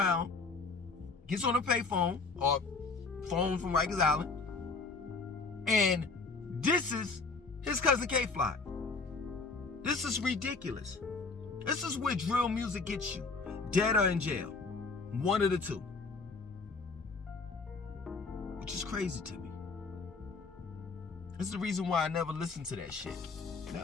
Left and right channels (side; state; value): right; quieter; 4.1 dB